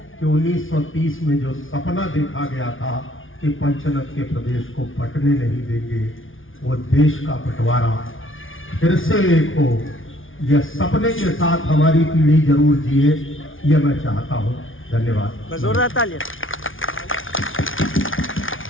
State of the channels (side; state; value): right; late; 0.57 ms